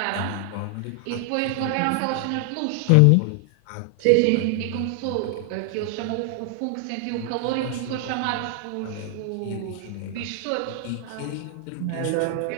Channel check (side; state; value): both; different; correlation 0.00